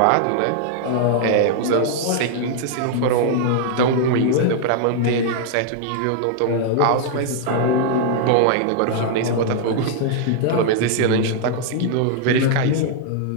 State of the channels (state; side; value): different; both; correlation -0.01